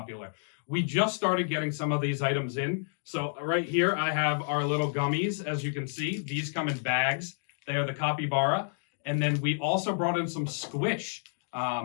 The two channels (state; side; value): silent; right; digital silence